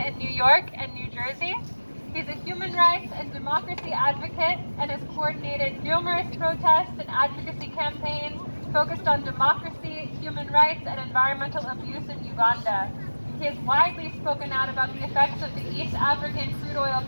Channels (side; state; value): both; inverted; correlation -1.00